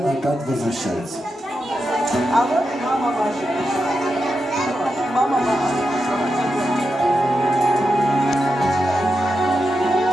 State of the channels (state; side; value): normal; both; correlation 0.88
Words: опять возвращается. А вот мама ваша. Мама ваша.